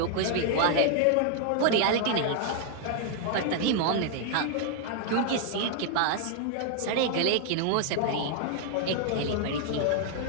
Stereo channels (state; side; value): different; both; correlation 0.00